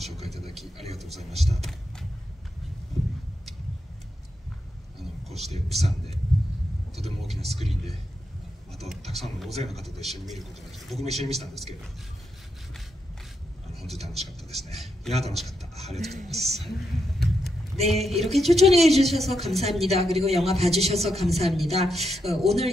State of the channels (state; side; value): normal; both; correlation 0.83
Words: 介いただきありがとうございました。こうしてプサンでとても大きなスクリーンでまたたくさんの大勢の方と一緒に見ることができて、僕も一緒に見てたんですけど、本当に楽しかったですね。いや楽しかった。ありがとうございます。네, 이렇게 초청해 주셔서 감사합니다. 그리고 영화 봐주셔서 감사합니다.